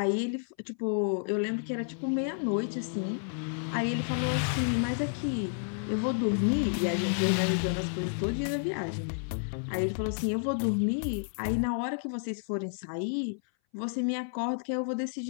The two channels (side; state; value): right; silent; 57 dB below the other